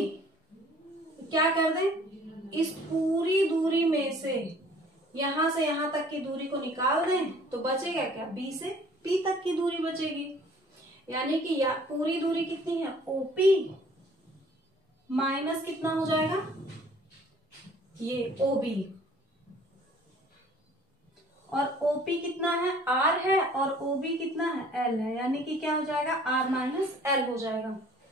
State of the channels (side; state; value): both; normal; correlation 0.54